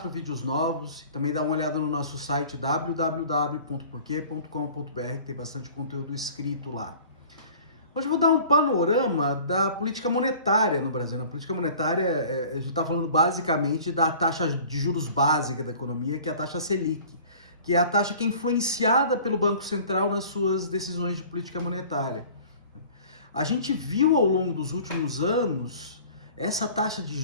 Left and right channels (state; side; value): inverted; both; correlation -0.47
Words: vídeos novos. E também dá uma olhada no nosso site www.porquê.com.br, que tem bastante conteúdo escrito lá. Hoje eu vou dar um panorama da política monetária no Brasil. Na política monetária, a gente está falando basicamente da taxa de juros básica da economia, que é a taxa Selic, que é a taxa que é influenciada pelo Banco Central nas suas decisões de política monetária. A gente viu ao longo dos últimos anos essa taxa de